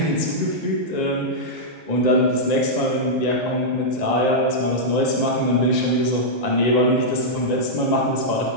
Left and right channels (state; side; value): normal; both; correlation -0.08